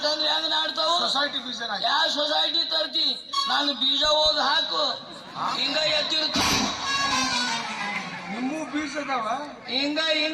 ಹೆಂಗ್ ನಾಡ್ತಾವು? ಸೊಸೈಟಿ ಬೀಜ. ಯಾವ ಸೊಸೈಟಿ ತರ್ತಿ? ನಾನು ಬೀಜ ಓದ್ ಹಾಕು, ಹಿಂಗ ಎತ್ತಿರ್ತೀನಿ. ನಿಮ್ಮೂ ಬೀಜ ಅದಾವ? ಹಿಂಗ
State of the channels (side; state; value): both; identical; correlation 1.00